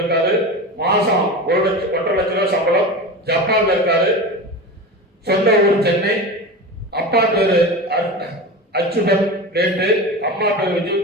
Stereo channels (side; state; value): both; normal; correlation 0.27